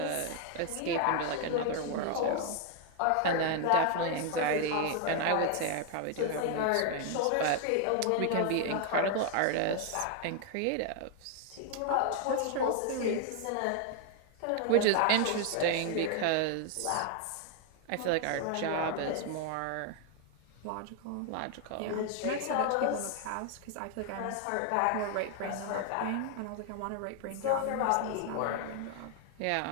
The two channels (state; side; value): different; both; correlation 0.00